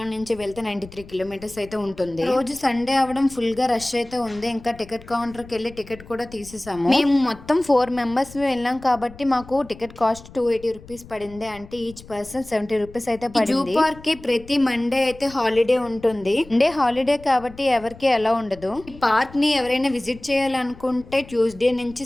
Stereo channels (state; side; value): noise; left; rumble, 19 dB below the sound